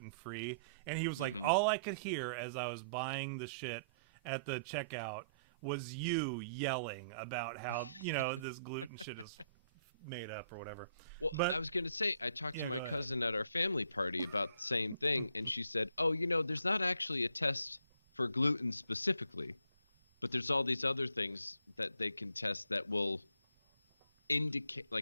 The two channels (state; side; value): inverted; both; correlation -0.66